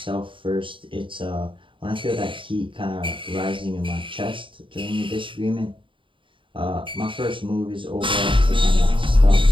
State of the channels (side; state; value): left; late; 0.25 ms